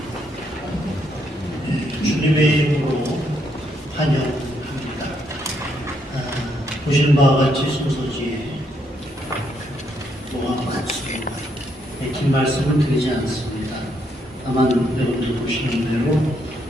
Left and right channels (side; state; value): both; normal; correlation 0.75